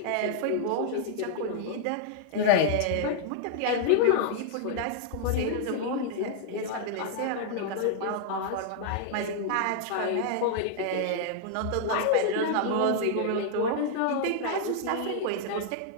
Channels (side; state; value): both; different; correlation -0.01